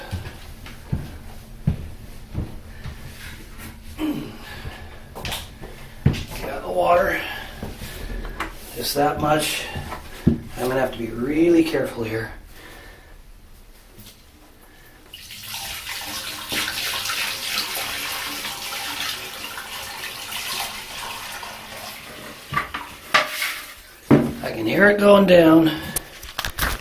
Got the water, just that much. I'm going to have to be really careful here. I can hear it going down.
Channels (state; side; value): identical; both; correlation 1.00